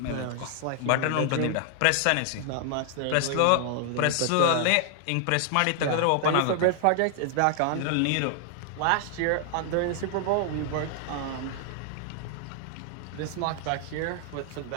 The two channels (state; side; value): different; both; correlation 0.00